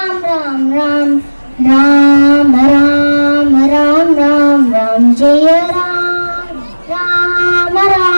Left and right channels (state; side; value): inverted; both; correlation -1.00